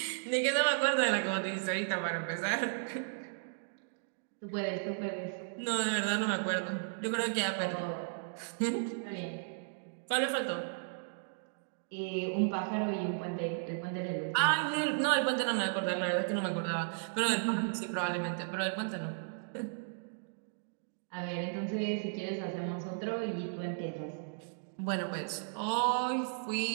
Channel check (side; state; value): left; silent; digital silence